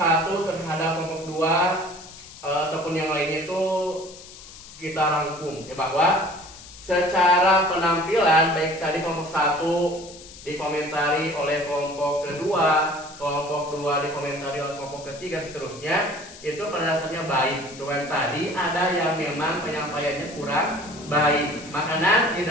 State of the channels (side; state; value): left; noise; hiss, 17 dB below the sound